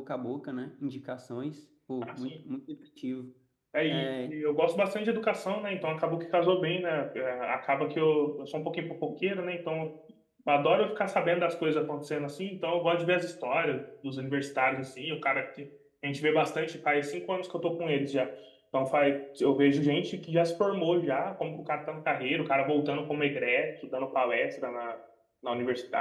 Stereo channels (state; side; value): identical; both; correlation 1.00